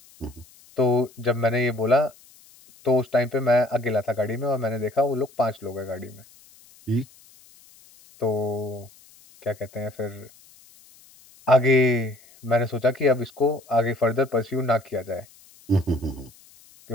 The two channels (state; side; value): noise; left; hiss, 26 dB below the sound